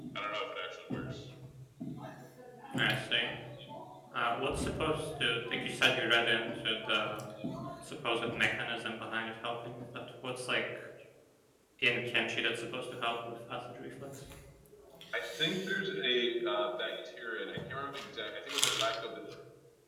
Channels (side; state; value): both; identical; correlation 1.00